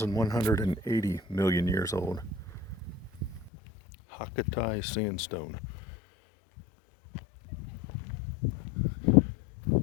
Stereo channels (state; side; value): drops out; right; at 3.5 s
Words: million years old. Hakkatai sandstone.